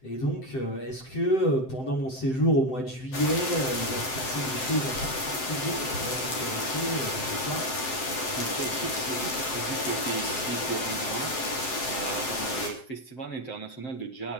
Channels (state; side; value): late; right; 7.7 ms